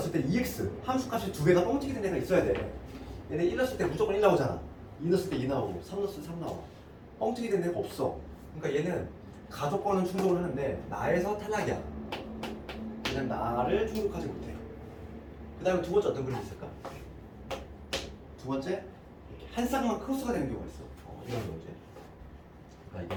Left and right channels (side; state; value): both; identical; correlation 1.00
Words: 때 2x 함수값이 두 개가 뻥튀기 된 애가 있어야 돼. 얘네 1 넣었을 때 무조건 1 나오잖아. 2 넣었을 때 2 나오고 3 넣었을 때 3 나와. 뻥튀기 된 애가 없어. 그러니까 얘는 가족권은 충족을 하는데 나에서 탈락이야. 그냥 나를 충족하지 못해. 그 다음에 두 번째 어떤 그림이 있을까? 두 번째 이렇게 한 쌍만 크로스가 되는 경우가 있어. 이런 경우지. 그러니까